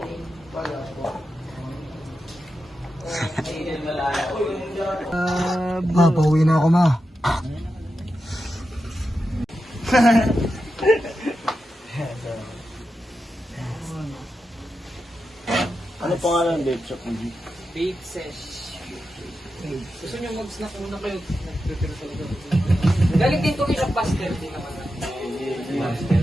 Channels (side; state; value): both; normal; correlation 0.89